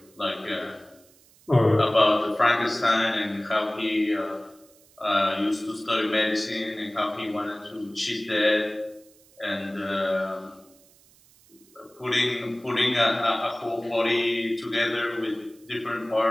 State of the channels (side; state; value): right; noise; hiss, 29 dB below the sound